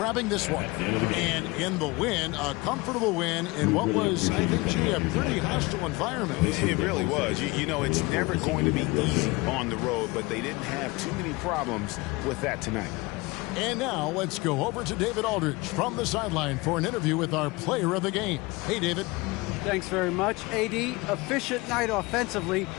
this one. And in the win, a comfortable win in what was, I think, a pretty hostile environment. It really was. You know, it's never going to be easy on the road, but they didn't have too many problems with that tonight. And now let's go over to David Aldridge from the sideline for an interview with our player of the game. Hey, David. Thanks very much. AD, efficient night offensively.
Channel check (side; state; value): right; quieter; 23.5 dB